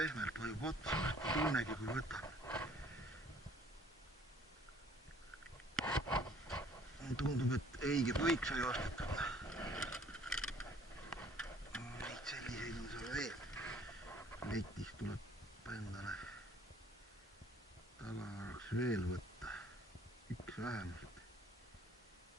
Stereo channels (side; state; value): both; normal; correlation 0.57